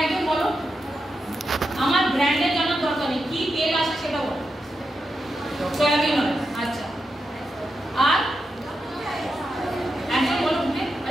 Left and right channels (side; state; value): both; normal; correlation 0.87